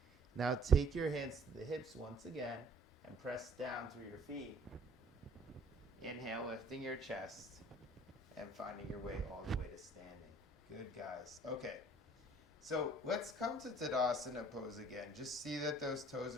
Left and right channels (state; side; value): normal; both; correlation 0.56